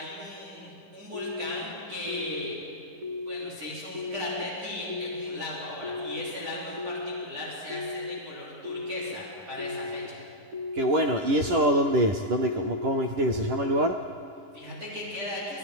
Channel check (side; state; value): left; late; 10 ms